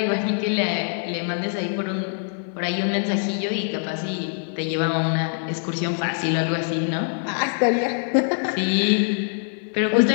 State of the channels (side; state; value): right; silent; 62 dB below the other